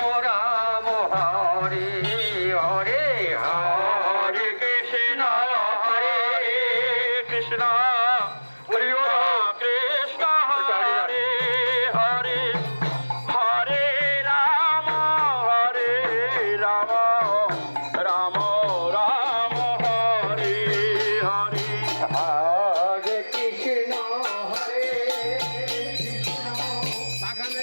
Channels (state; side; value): inverted; both; correlation -1.00